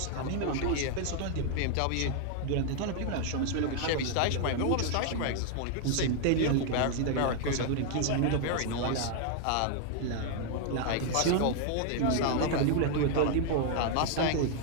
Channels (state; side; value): different; both; correlation 0.00